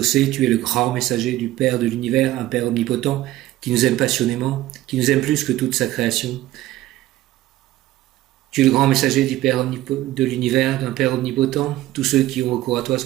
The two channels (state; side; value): quieter; left; 15.5 dB